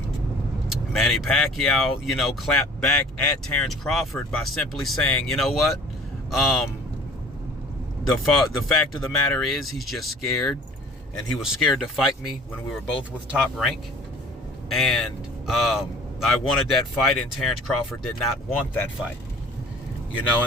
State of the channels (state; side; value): normal; both; correlation 0.47